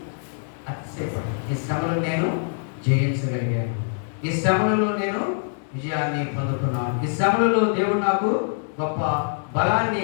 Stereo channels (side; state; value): right; silent; digital silence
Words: అతిశయపడి ఈ శ్రమలను నేను జయించగలిగాను, ఈ శ్రమలలో నేను విజయాన్ని పొందుకున్నాను, ఈ శ్రమలలో దేవుడు నాకు గొప్ప